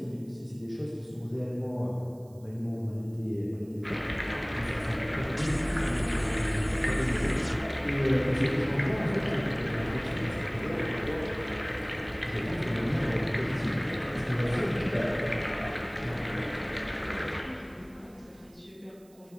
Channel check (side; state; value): right; noise; hiss, 29 dB below the sound